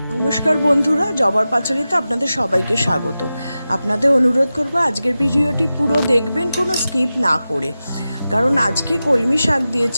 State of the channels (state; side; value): inverted; both; correlation -0.94